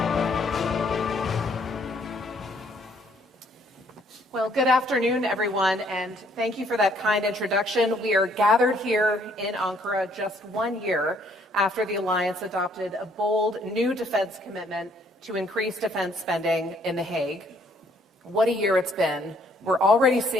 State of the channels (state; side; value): normal; both; correlation 0.65